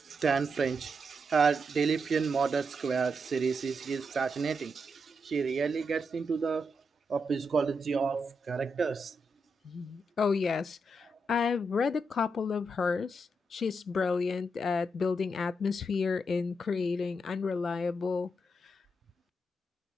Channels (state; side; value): normal; both; correlation 0.83